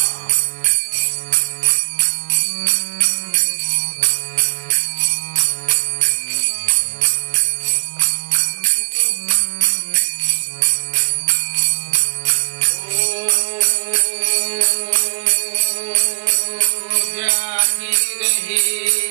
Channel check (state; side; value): quieter; left; 40.0 dB